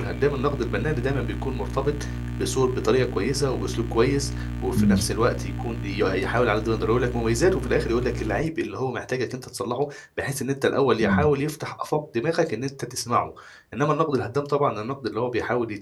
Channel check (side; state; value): both; identical; correlation 1.00